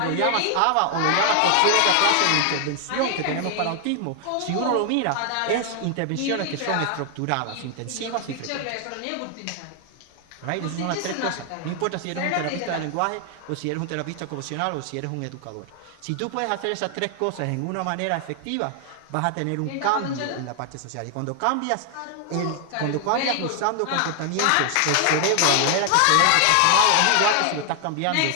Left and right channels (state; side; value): different; both; correlation 0.00